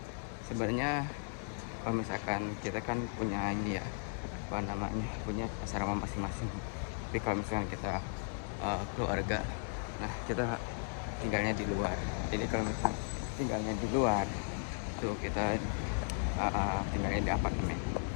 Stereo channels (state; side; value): silent; right; 54 dB below the other